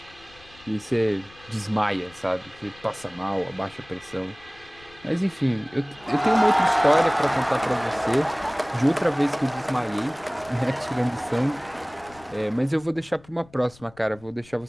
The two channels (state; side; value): noise; left; rumble, 25 dB below the sound